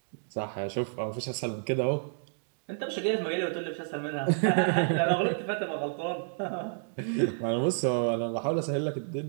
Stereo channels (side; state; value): left; silent; digital silence